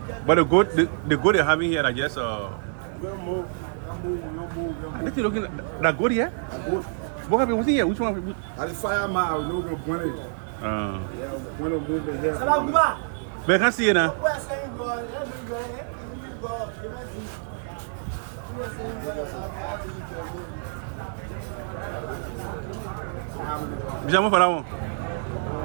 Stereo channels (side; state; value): left; silent; digital silence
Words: But the goat they're having here, I guess. What you looking at? That goat here? What happened? What's in here? Which one? I just fire my I know going to point it. Yeah, when I'm moving here. But I can't see it now.